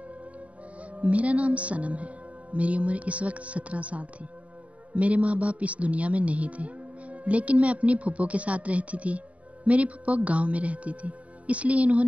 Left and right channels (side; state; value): left; late; 0.066 ms